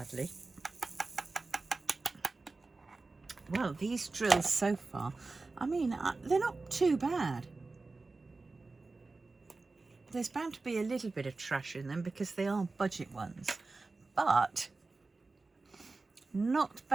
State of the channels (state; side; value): quieter; left; 3.6 dB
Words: Well, these drills so far, I mean, they're not too bad. There's bound to be a little bit of trash in them because they are budget ones, but not